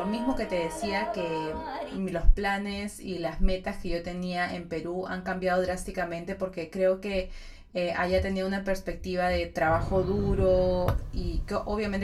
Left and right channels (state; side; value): identical; both; correlation 1.00